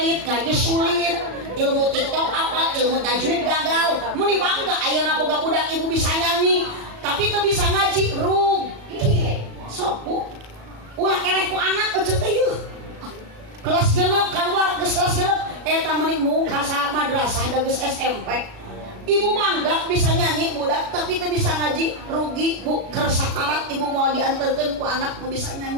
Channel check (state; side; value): late; left; 37 ms